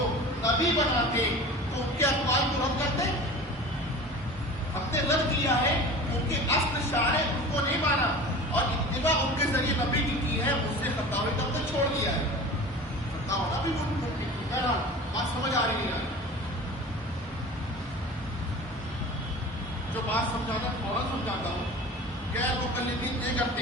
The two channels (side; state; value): both; normal; correlation 0.37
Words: نبی بناتے تو ان کے اقوال کو رد کرتے. ہم نے رد کیا ہے، ان کے اصل شارع ان کو نہیں مانا اور اتباع ان کے ذریعے نبی کی ہے. مجھ سے خطا ہوئی تب تک چھوڑ دیا ہے. خطا ہونا بھی ممکن ہے. بات سمجھ آ رہی ہے؟ جو بات سمجھانا فوراً سمجھاتا ہوں. غیر مقلدین یہ